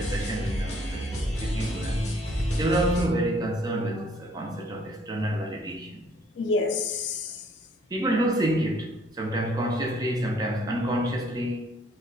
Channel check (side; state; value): both; normal; correlation 0.62